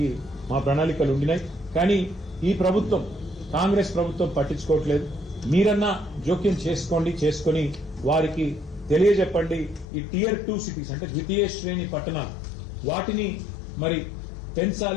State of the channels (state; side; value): drops out; right; at 9.9 s